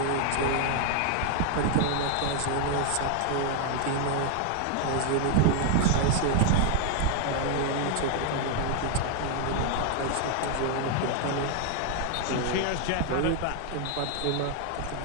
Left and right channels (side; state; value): both; different; correlation 0.00